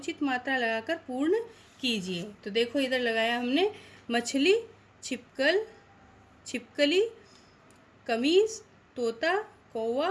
मात्रा लगाकर पूर्ण कीजिए। तो देखो, इधर लगाया हमने मछली, छिपकल, छिपकली, कमीज, तोता, कौवा,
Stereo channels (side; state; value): both; identical; correlation 1.00